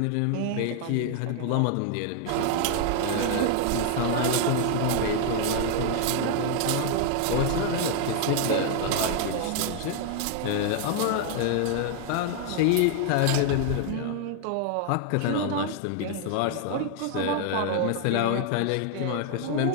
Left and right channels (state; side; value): different; both; correlation 0.00